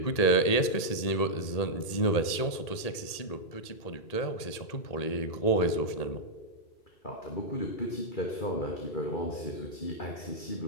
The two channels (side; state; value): right; late; 1.8 ms